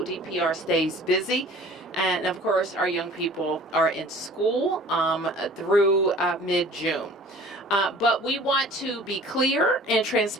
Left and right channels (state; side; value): normal; both; correlation 0.47